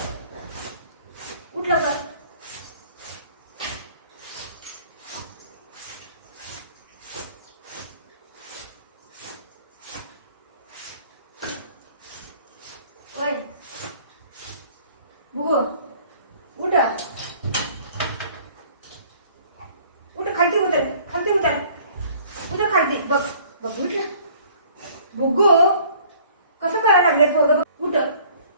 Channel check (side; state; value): both; inverted; correlation -0.55